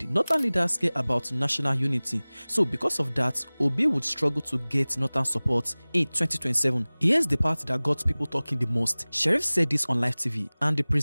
Northern leaders care about national unity, so because of that, Obi would struggle to get Northern support in 2027. Here's the part that got people talking the most. Sheriff said this on live TV, and the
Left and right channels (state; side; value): inverted; both; correlation -1.00